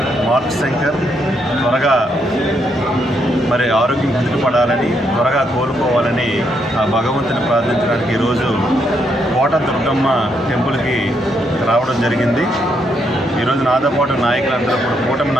మార్క్ శంకర్ త్వరగా ఆరోగ్యం కుదుటపడాలని, త్వరగా కోలుకోవాలని ఆ భగవంతుని ప్రార్థించడానికి ఈరోజు కోట దుర్గమ్మ టెంపుల్కి రావడం జరిగింది. ఈరోజు నాతో పాటు నాయకులందరూ కూడా, కూటమి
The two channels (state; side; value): normal; both; correlation 0.76